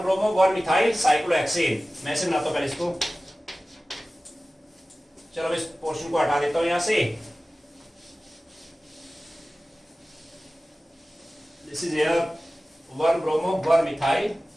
ब्रोमो 1 मिथाइल साइक्लोहेक्सेन। मैं से बनाता हूं पहले इसको, चलो इस पोर्शन को हटा देता हूं यहां से। This is here 1 bromo 1 methyl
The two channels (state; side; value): normal; both; correlation 0.97